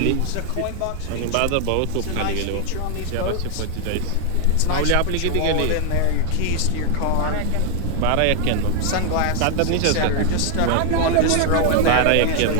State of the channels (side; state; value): both; different; correlation 0.00